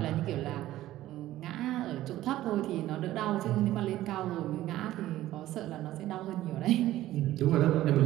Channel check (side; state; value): left; quieter; 14.8 dB